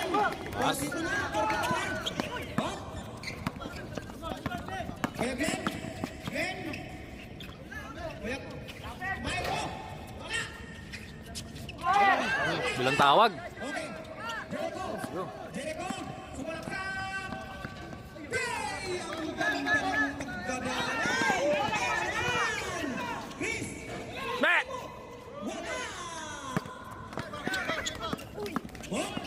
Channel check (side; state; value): both; identical; correlation 1.00